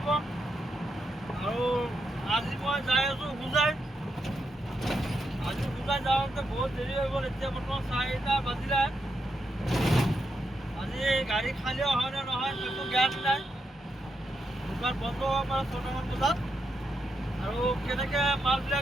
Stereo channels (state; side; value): normal; both; correlation 0.83